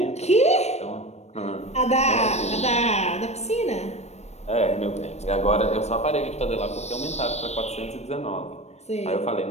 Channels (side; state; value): right; late; 0.32 ms